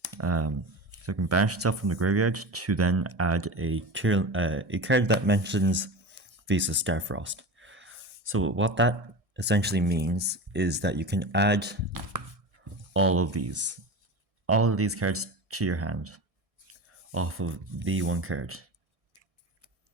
So it can banish itself from the graveyard to then add a card that mentions Visa Starfrost. So what that essentially means is that you can add all of these cards to your hand off of the one card.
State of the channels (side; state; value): left; late; 1.6 ms